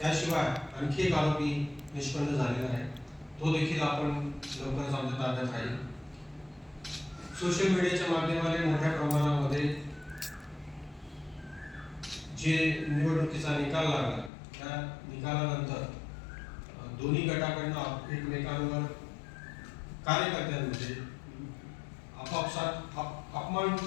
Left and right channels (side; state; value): right; drops out; at 14.3 s